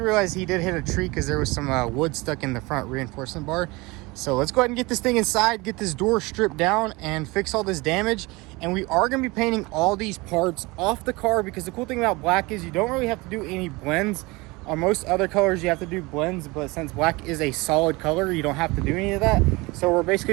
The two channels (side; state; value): left; quieter; 23.8 dB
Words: he did hit a tree because there was some wood stuck in the front reinforcement bar. So let's go ahead and get this thing inside, get this door stripped down and fix all this damage. And we are going to be painting all these parts off the car, because the cool thing about black is you don't really have to do any blends. On most other colors you have to do blends, but since black is a solid color, you don't have to do any of that. So we're